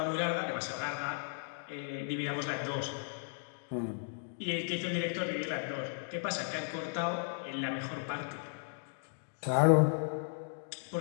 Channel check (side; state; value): right; silent; digital silence